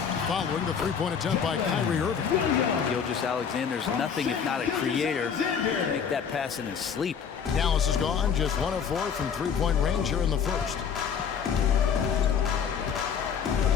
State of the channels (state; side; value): quieter; right; 7.1 dB